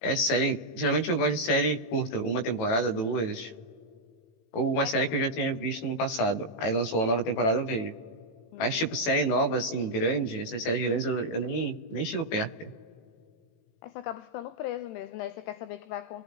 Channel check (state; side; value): late; right; 18 ms